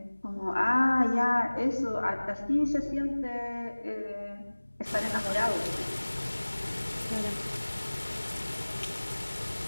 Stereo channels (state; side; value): inverted; both; correlation -1.00